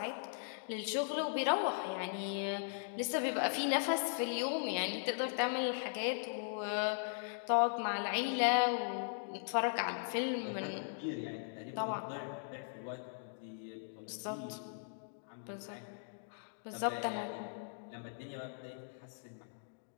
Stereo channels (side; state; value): right; silent; digital silence